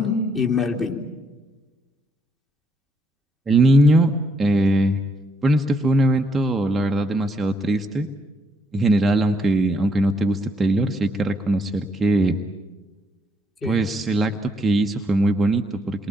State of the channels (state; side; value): normal; both; correlation 0.74